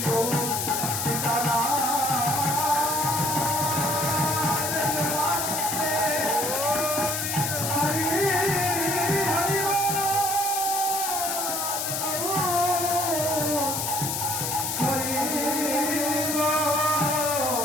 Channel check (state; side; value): noise; left; hiss, 1 dB below the sound